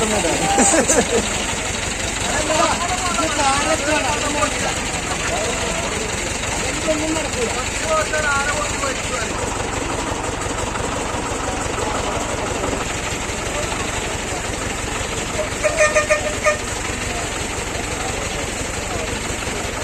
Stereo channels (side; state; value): both; identical; correlation 1.00